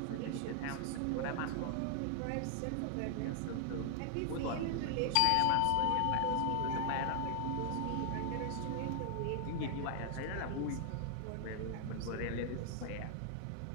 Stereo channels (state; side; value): different; both; correlation 0.00